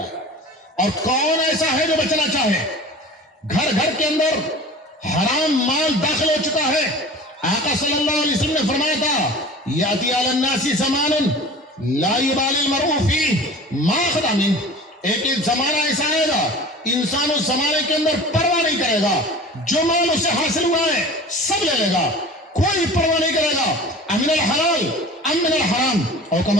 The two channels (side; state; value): both; normal; correlation 0.39